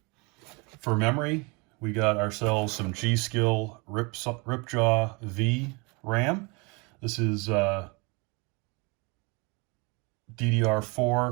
For memory, we got ourselves some G.Skill Ripjaw V RAM. This is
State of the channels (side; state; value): left; quieter; 29.4 dB